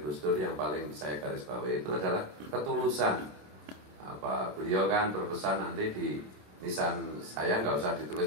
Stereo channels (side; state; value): left; late; 27 ms